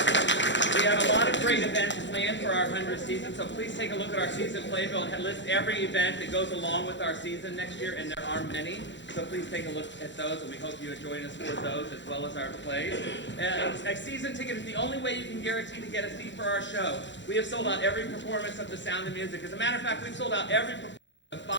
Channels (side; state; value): right; late; 0.53 ms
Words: we have a lot of great events planned for our 100th season, so please take a look at our season playbill and list every event that goes along with our season next year, and there are many. So please take a look at those, and we hope you join us for those as well as our plays. A season ticket is the only way you can guarantee to get a seat for our show. We have sold out every performance of The Sound of Music. As a matter of fact, we've sold out every performance of 5